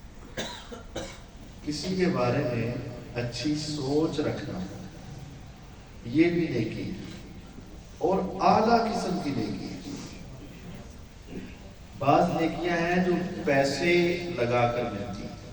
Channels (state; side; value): identical; both; correlation 1.00